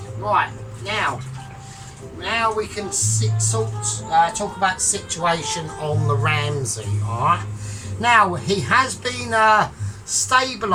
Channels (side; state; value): both; identical; correlation 1.00